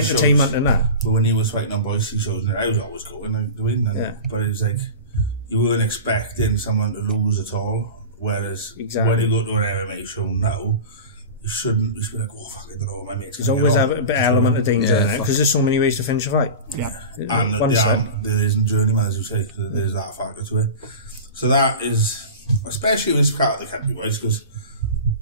in that? But when he was fighting on Boise shows, I was always going to win. But it's like, you weren't expecting someone to lose at all. Whereas when you go to an MMA show now, you shouldn't be like, oh fuck, I don't know what my mate's going to There's always a bit element of danger in it, because there's so many ways to finish a fight. Yeah. And there isn't journeyman, as you say, there's that factor to it. So that is, especially with this part of the country, boys, because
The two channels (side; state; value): both; inverted; correlation -0.31